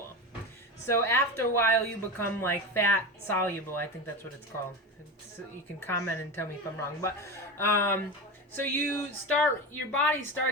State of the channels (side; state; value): both; normal; correlation 0.22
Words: So after a while, you become like fat soluble. I think that's what it's called. You can comment and tell me if I'm wrong. But so your body